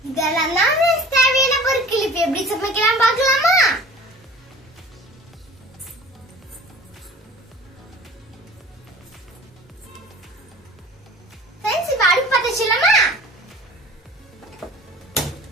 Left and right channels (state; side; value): normal; both; correlation 0.43